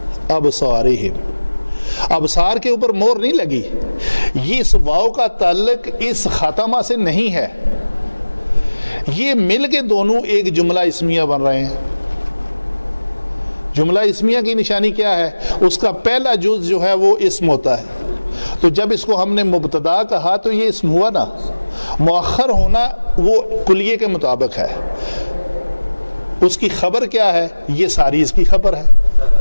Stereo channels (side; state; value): both; inverted; correlation -1.00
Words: ابصارہم، ابصار کے اوپر مور نہیں لگی. یہ اس واو کا تعلق اس خاتمہ سے نہیں ہے، یہ مل کے دونوں ایک جملہ اسمیہ بن رہے ہیں. جملہ اسمیہ کی نشانی کیا ہے؟ اس کا پہلا جز جو ہے وہ اسم ہوتا ہے. تو جب اس کو ہم نے مبتدا کہا تو یہ اسم ہوا نا. مؤخر ہونا وہ کلیے کے مطابق ہے. اس کی خبر کیا ہے؟ یہ ساری اس کی خبر ہے.